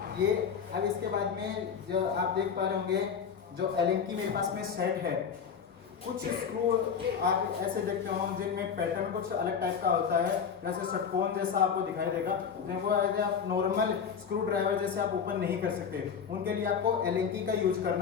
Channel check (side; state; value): right; quieter; 6.9 dB